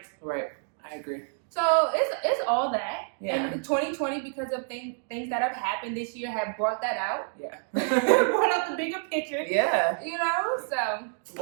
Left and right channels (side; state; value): left; silent; 58 dB below the other